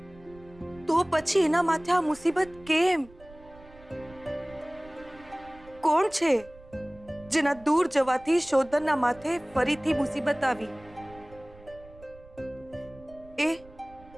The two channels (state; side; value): noise; right; rumble, 22 dB below the sound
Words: તો પછી એના માથે આ મુસીબત કેમ? કોણ છે જેના દૂર જવાથી શોધનના માથે ફરીથી મુસીબત આવી? એ